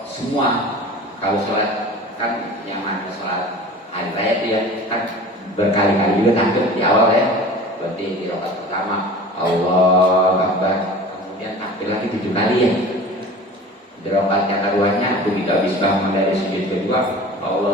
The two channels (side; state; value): both; normal; correlation 0.39